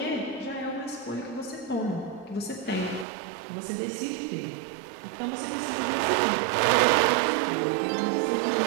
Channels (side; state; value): left; drops out; at 3.1 s